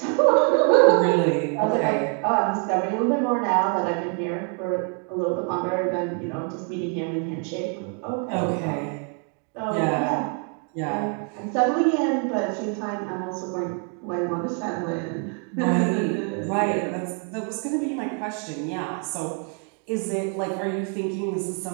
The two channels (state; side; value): quieter; left; 38.9 dB